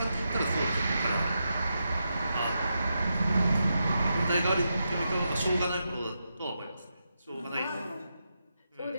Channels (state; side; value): inverted; both; correlation -0.86